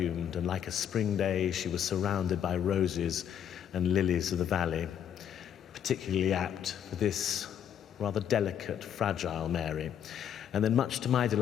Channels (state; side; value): quieter; right; 9.3 dB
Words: and like a spring day she was surrounded by roses and lilies of the valley." Particularly apt for this rather delicate, fragile Mary. And then, much to my